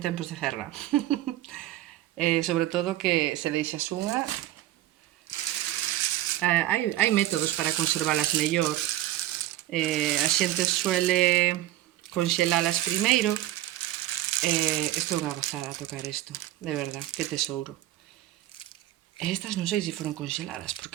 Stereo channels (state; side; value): quieter; left; 14.6 dB